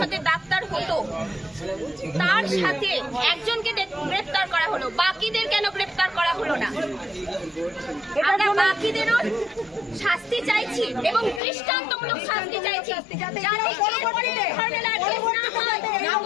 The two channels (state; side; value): drops out; right; at 11.4 s